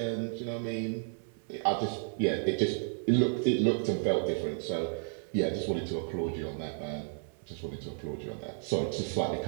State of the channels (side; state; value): left; silent; 56 dB below the other